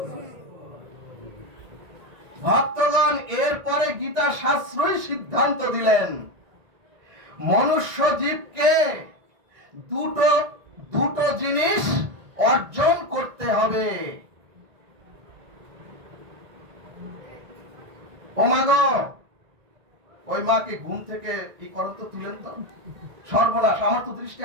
ভক্তগণ এরপরে গীতা শাস্ত্রই সিদ্ধান্ত দিলেন, মনুষ্য জীবকে দুটো জিনিস অর্জন করতে হবে। ও মা গো, ওই মাকে ঘুম থেকে এই করেন তো, তুলেন তো। সর্বনাশ, আমার তো দৃষ্টি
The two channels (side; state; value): left; late; 1.8 ms